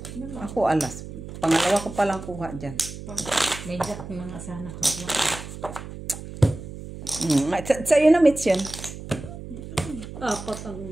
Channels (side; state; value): right; noise; hum, 11 dB below the sound